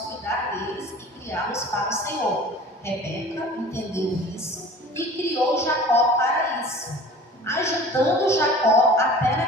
deles e criá-los para o Senhor. Rebeca entendeu isso e criou Jacó para isso, ajudando Jacó até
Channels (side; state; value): both; normal; correlation 0.43